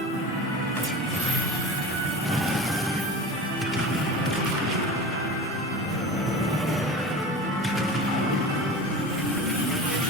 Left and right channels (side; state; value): both; normal; correlation 0.33